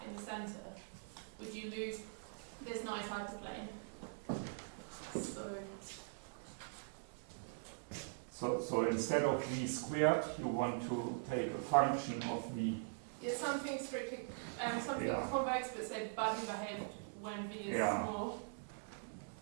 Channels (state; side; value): silent; left; digital silence